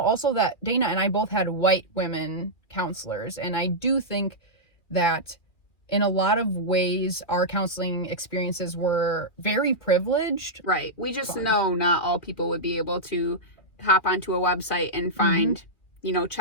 that Dana and I both had white women counselors. And I do think that in a lot of ways, our counseling experiences were very privileged. Right. We just know not all people would be able to hop onto a website and find,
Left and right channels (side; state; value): right; late; 2.5 ms